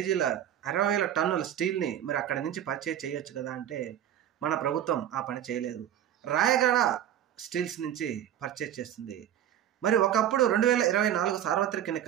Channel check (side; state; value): left; quieter; 10.8 dB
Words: 60,000 టన్నుల స్టీల్ని మరి అక్కడి నుంచి పర్చేజ్ చేయొచ్చు కదా అంటే మన ప్రభుత్వం ఆ పని చేయలేదు. రాయగడ స్టీల్స్ నుంచి పర్చేజ్ చేస్తుంది. మరి ఒకప్పుడు 2024 సార్వత్రిక